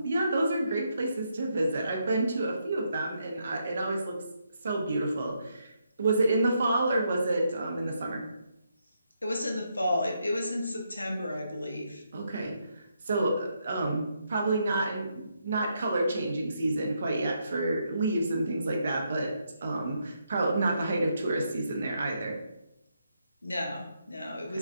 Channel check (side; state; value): both; inverted; correlation -0.79